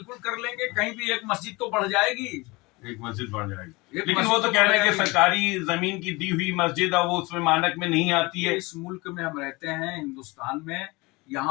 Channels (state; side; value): quieter; right; 24.1 dB